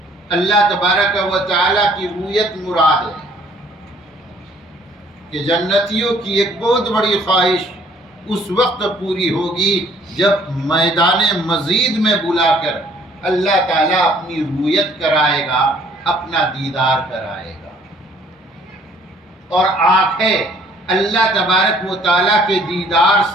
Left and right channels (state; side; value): normal; both; correlation 0.59